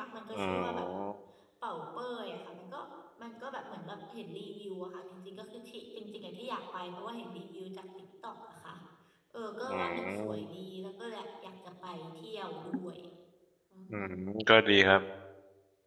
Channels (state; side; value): identical; both; correlation 1.00